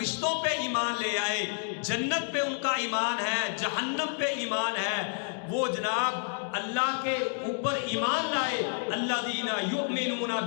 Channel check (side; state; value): right; silent; digital silence